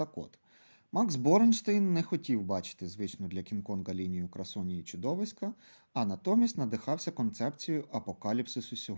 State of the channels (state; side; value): inverted; both; correlation -1.00